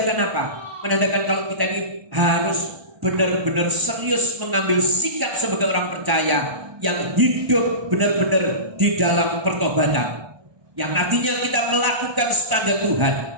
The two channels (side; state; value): left; late; 1.1 ms